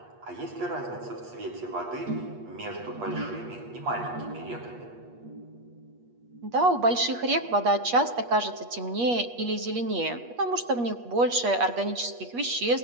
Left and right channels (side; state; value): left; late; 8.4 ms